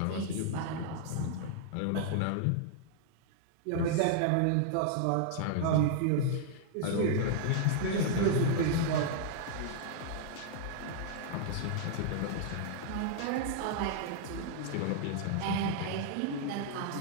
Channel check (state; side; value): different; both; correlation -0.01